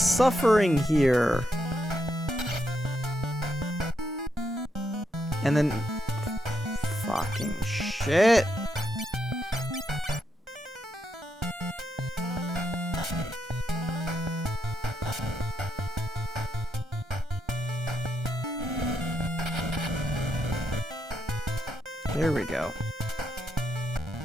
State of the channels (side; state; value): both; normal; correlation 0.80